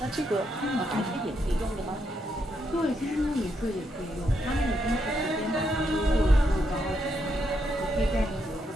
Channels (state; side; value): normal; both; correlation 0.79